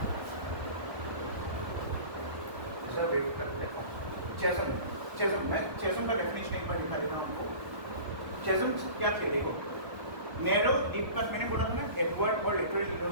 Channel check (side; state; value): left; late; 1.3 ms